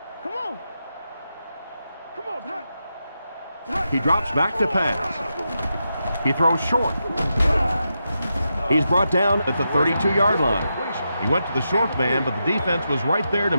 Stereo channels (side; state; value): both; inverted; correlation -0.87